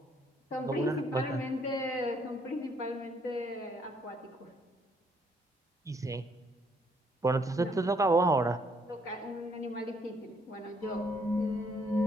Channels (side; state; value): both; normal; correlation 0.68